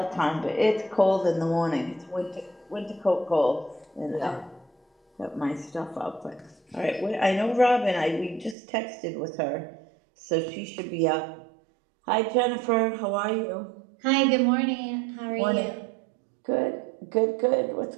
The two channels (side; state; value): left; drops out; at 8.6 s